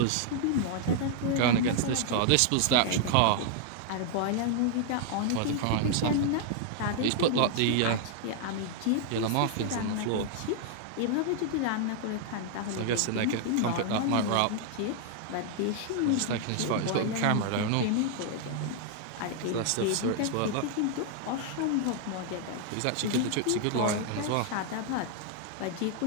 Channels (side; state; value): both; different; correlation -0.01